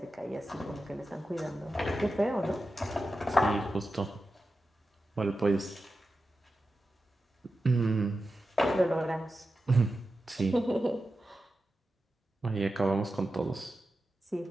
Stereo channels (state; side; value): normal; both; correlation 0.92